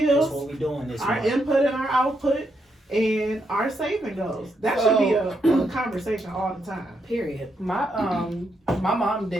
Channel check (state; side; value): normal; both; correlation 0.80